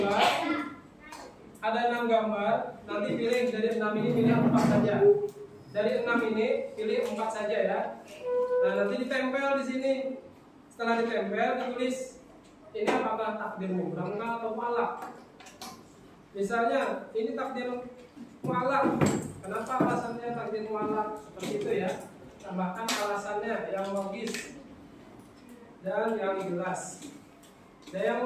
Ada 6 gambar. Nanti pilih dari 6 ini pilih 4 saja. Dari 6 ini pilih 4 saja ya. Nah, nanti ditempel di sini. Setelah ditempel ditulis ini apakah takdir mubram atau mu'allaq. Misalnya ini takdir mu'allaq. Kenapa alasannya takdir mu'allaq seperti itu ya? Tambahkan alasannya yang logis dan yang jelas. Ada yang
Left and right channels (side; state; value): both; identical; correlation 1.00